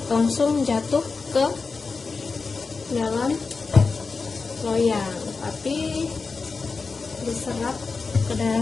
langsung jatuh ke dalam loyang, tapi diserap ke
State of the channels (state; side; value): quieter; right; 4.4 dB